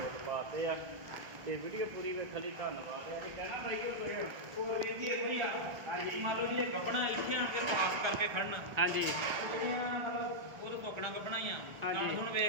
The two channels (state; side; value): late; left; 1.5 ms